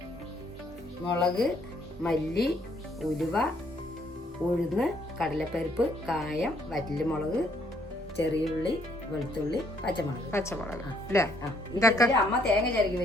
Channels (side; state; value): both; normal; correlation 0.67